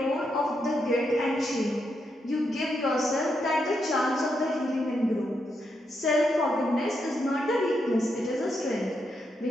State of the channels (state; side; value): normal; both; correlation 0.82